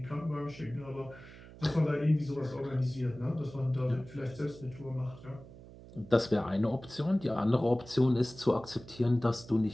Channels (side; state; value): right; noise; hum, 18 dB below the sound